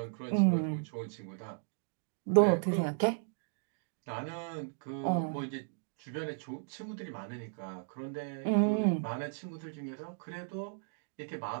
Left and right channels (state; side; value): silent; left; digital silence